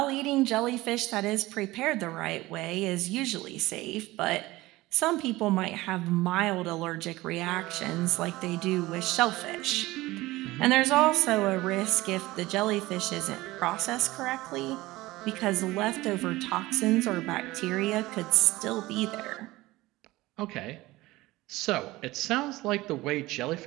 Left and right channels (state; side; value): quieter; left; 19.0 dB